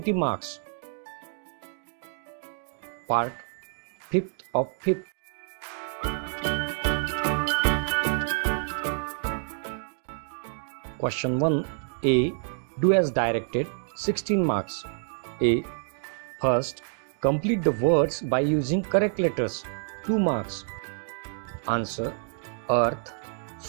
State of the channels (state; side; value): silent; left; digital silence